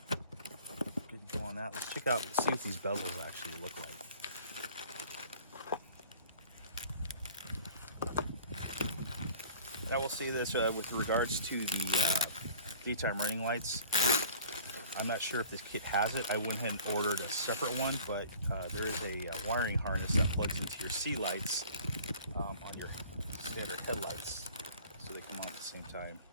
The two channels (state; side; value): inverted; both; correlation -0.48